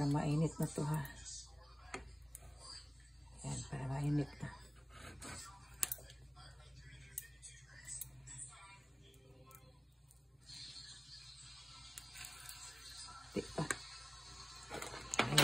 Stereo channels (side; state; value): both; normal; correlation 0.98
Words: mainit na to ha. Ayan, para mainit na. Diba?